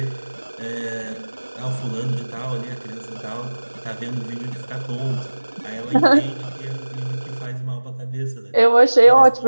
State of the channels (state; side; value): inverted; both; correlation -1.00